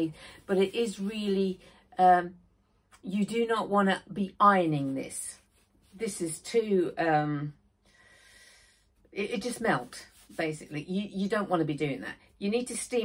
but it is really, you do not want to be ironing this. This is too, it just melt, basically. You don't want to be doing that. You need to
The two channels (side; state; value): both; identical; correlation 1.00